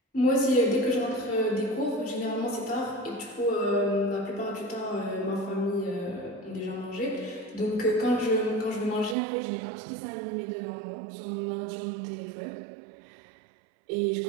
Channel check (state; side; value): drops out; left; at 9.2 s